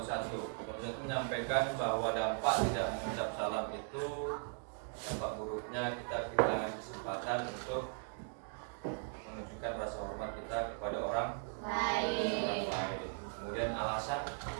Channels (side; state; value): left; silent; 52 dB below the other